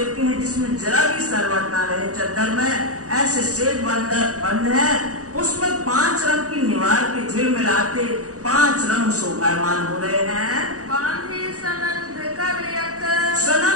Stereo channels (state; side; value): late; left; 0.66 ms